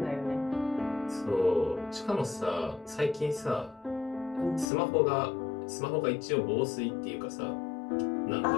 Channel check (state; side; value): drops out; right; at 4.7 s